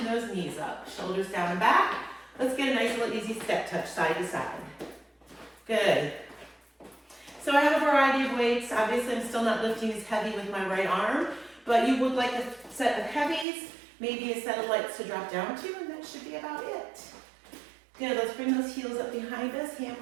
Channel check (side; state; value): left; drops out; at 13.5 s